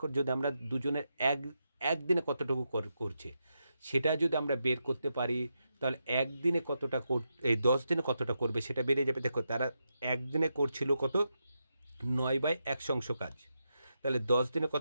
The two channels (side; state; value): both; inverted; correlation -0.85